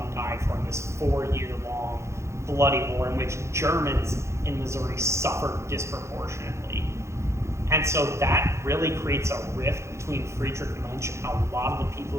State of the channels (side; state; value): left; late; 0.14 ms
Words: and died for in this 4-year-long bloody war in which Germans in Missouri suffered disproportionately. And so that really creates a rift between Friedrich Muench and a lot of the people